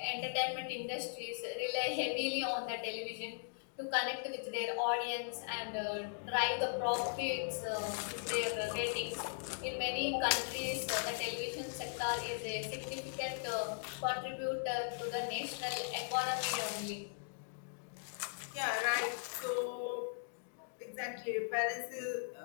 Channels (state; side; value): silent; right; digital silence